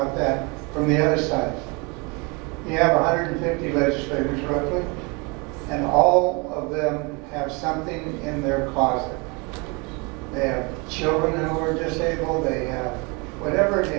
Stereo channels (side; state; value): left; quieter; 29.6 dB